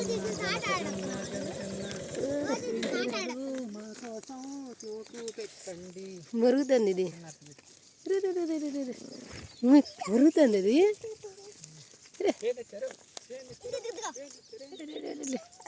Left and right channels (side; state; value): both; identical; correlation 1.00